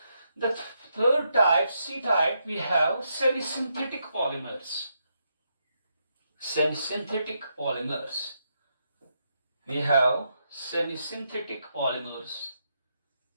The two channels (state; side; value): inverted; both; correlation -0.81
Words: The third type, C type, we have semi-synthetic polymers. Semi-synthetic polymers. We have semi-synthetic polymers.